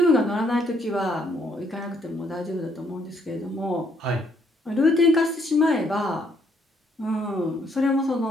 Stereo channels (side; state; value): both; normal; correlation 0.69